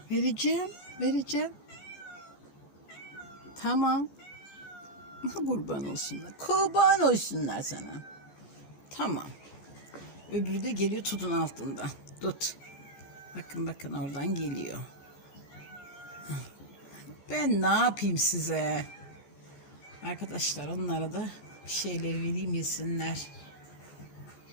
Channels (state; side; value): late; right; 14 ms